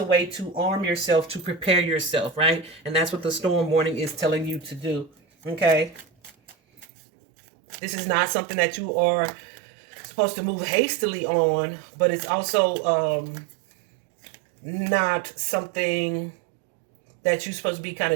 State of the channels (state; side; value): drops out; left; at 6.9 s